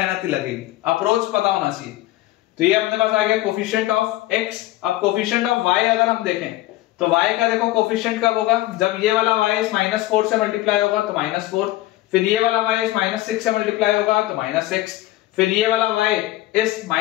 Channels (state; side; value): quieter; right; 16.6 dB